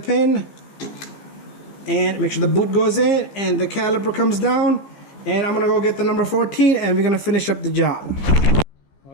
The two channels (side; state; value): right; late; 15 ms